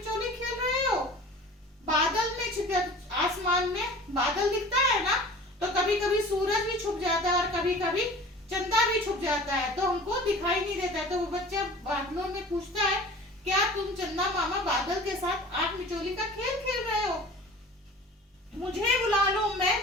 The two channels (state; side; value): normal; both; correlation 0.42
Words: खेल रहे हो? बादल में छिप, आसमान में बादल दिखता है ना, तो कभी कभी सूरज भी छुप जाता है और कभी कभी चंदा भी छुप जाता है, तो हमको दिखाई नहीं देता है। तो वो बच्चा बादलों में पूछता है, क्या तुम चंदा मामा बादल के साथ आंख मिचोली का खेल खेल रहे हो? मुझे बुला लो मैं